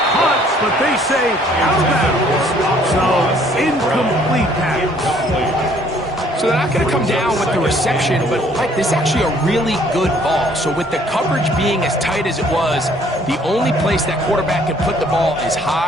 caught, but they say out of bounds. So, incomplete pass. So they're not going to come down with the reception, but Mike, this is actually a really good ball. So with the coverage being as tight as it was, the only place that quarterback can put the ball is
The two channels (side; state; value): both; normal; correlation 0.61